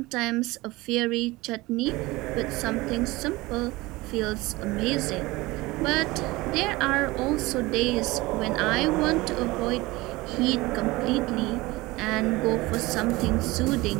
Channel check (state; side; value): quieter; left; 21.0 dB